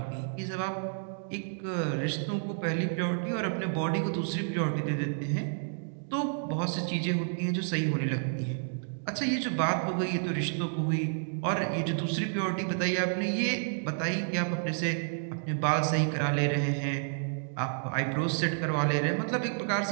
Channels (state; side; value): silent; left; digital silence